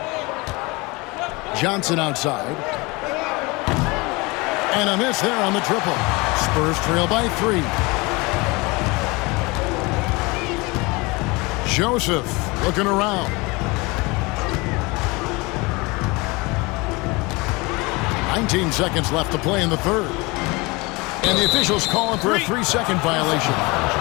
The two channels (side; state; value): right; quieter; 25.1 dB